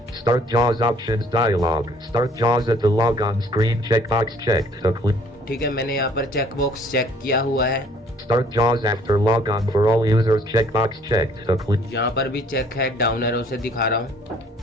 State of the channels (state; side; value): normal; both; correlation 0.59